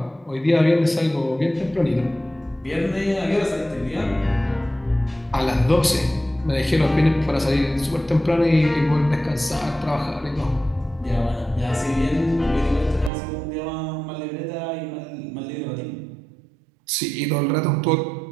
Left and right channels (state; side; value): drops out; left; at 13.1 s